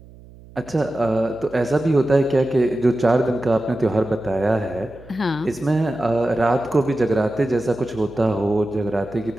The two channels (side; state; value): right; noise; hum, 22 dB below the sound